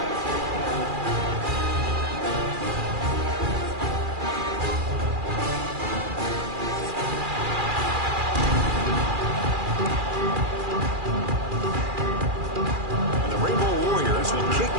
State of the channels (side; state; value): left; late; 2.4 ms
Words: And the Rainbow Warriors will kick